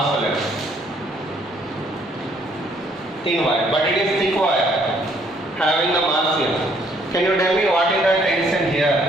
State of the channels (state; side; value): normal; both; correlation 0.65